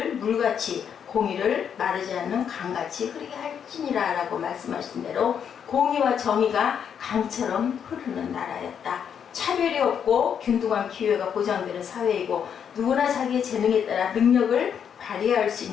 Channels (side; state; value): right; quieter; 7.9 dB